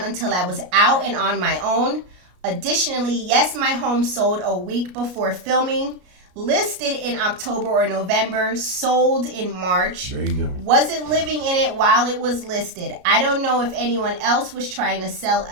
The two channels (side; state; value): left; late; 33 ms